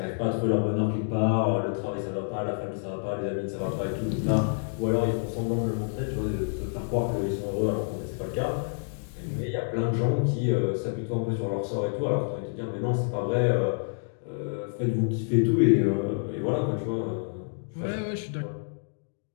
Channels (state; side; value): silent; right; digital silence